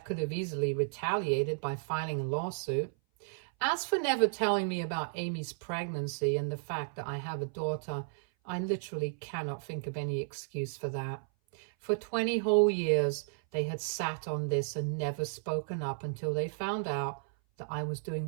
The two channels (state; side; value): silent; left; 56 dB below the other